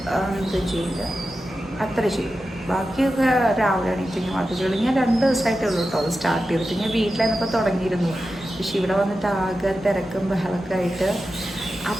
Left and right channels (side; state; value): both; normal; correlation 0.91